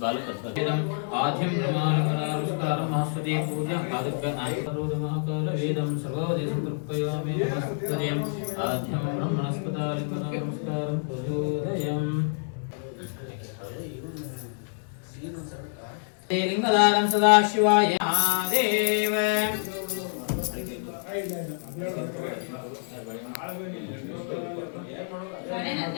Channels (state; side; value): silent; right; digital silence